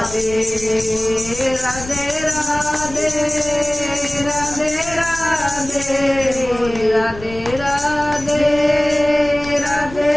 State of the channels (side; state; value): left; noise; rumble, 14 dB below the sound